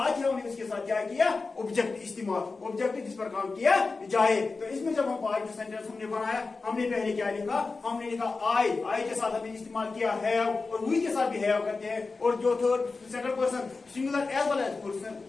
ही हमने इसके साथ क्या किया? ऑब्जेक्ट इस्तेमाल, ऑब्जेक्ट जिस पर काम किया जाए। तो इसमें जब हम पॉजिटिव सेंटेंस हमने बनाया, हमने पहले क्या लिखा? हमने लिखा आई के साथ हमने इस्तेमाल किया हैव, और वी के साथ भी हैव करते हैं। और जो third second person singular as well as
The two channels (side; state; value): right; quieter; 4.0 dB